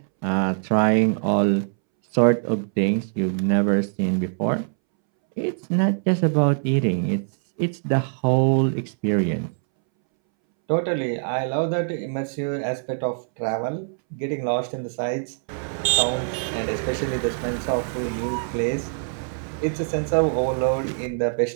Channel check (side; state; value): left; silent; 63 dB below the other